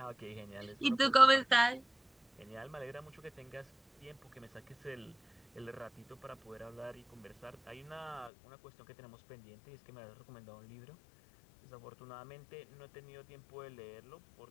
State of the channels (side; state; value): right; drops out; at 8.3 s